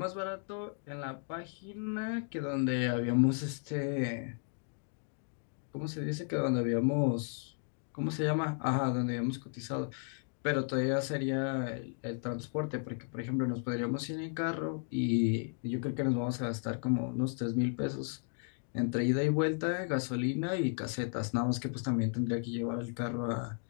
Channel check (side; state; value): right; silent; 55 dB below the other